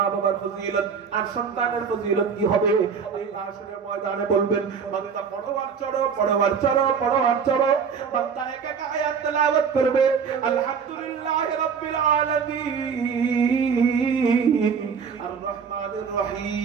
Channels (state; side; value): quieter; left; 6.3 dB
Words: বাবার ফজিলত। আর সন্তানের ফজিলত কি হবে? আল্লাহ হাসরের ময়দানে বলবেন, বান্দা পড়ো আর চড়ো, পড়ো আর চড়ো, পড়ো আর চড়ো। বান্দা এক এক আয়াত তেলাওয়াত করবে, আলহামদুলিল্লাহি রাব্বিল আলামিন আর রহমানির